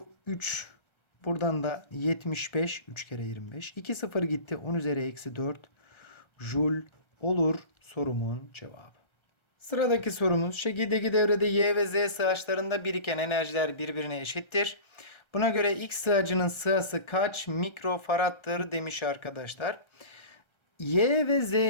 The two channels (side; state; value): right; late; 1.3 ms